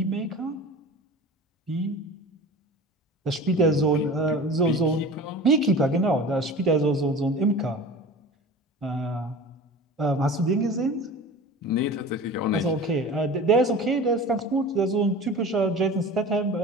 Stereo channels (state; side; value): normal; both; correlation 0.37